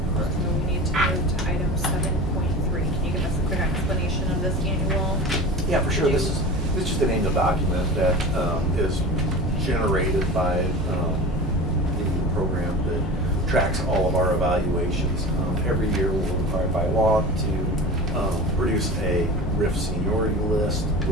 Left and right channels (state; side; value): normal; both; correlation 0.34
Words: Correct. So we need to move to item 7.3. Can you give us a quick explanation of this annual? Yeah, for sure. This is just an annual document that is generated by the program that tracks all of our evaluations. Every year we're required by law to produce a RIF seniority list,